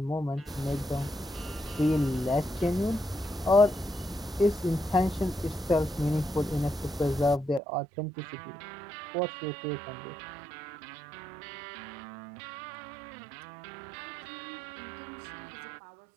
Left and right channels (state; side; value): drops out; left; at 7.6 s